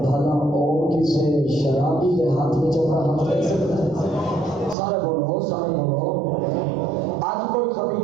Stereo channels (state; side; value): drops out; left; at 4.8 s